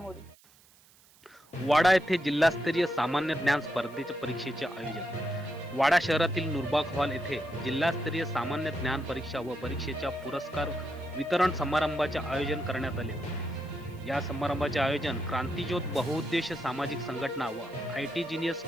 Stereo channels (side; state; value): right; noise; hiss, 28 dB below the sound